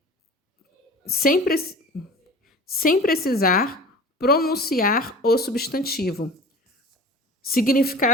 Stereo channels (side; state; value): both; normal; correlation 0.39